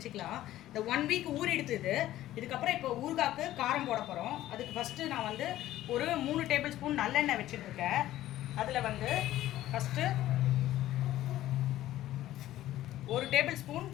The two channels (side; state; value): right; quieter; 14.2 dB